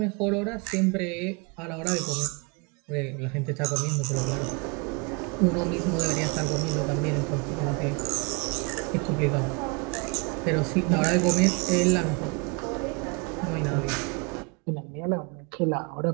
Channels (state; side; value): quieter; left; 31.3 dB